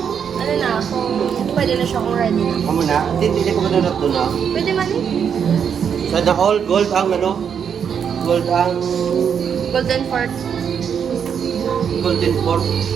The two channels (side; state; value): left; quieter; 7.6 dB